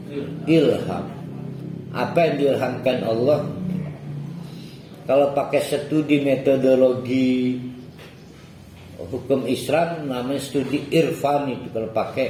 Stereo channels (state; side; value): identical; both; correlation 1.00